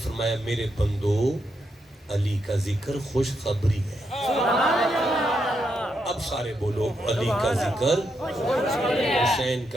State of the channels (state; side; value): normal; both; correlation 0.81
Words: فرمایا میرے بندو علی کا ذکر خوشخبری ہے. اب سارے بولو علی کا ذکر, حسین